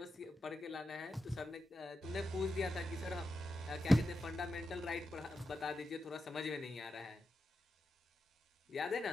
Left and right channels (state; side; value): normal; both; correlation 0.89